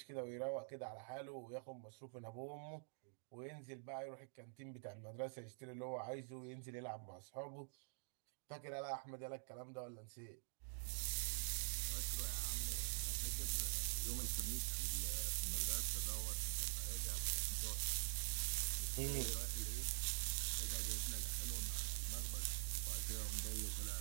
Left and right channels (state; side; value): silent; left; digital silence